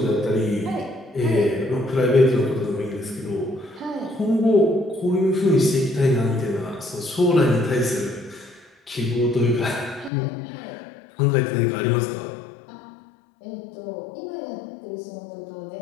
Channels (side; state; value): right; drops out; at 10.1 s